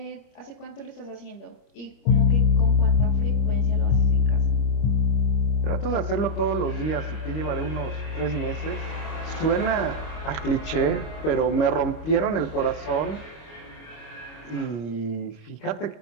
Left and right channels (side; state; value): right; late; 25 ms